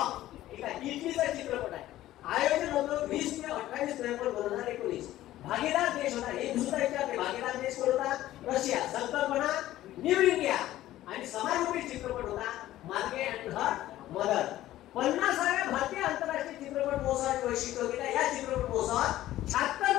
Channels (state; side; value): quieter; right; 14.5 dB